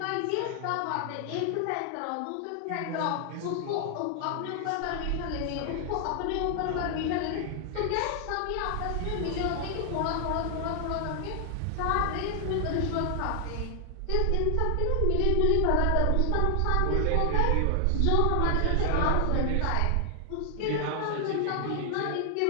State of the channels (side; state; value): both; different; correlation 0.00